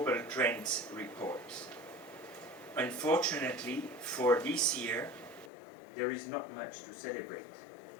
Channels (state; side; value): drops out; right; at 5.5 s